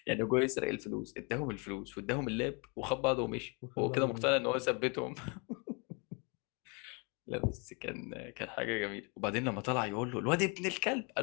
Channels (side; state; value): right; quieter; 32.3 dB